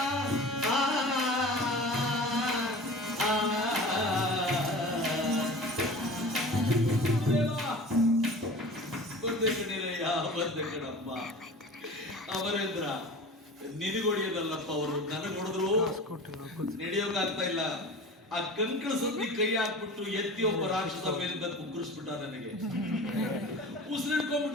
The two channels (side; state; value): both; normal; correlation 0.38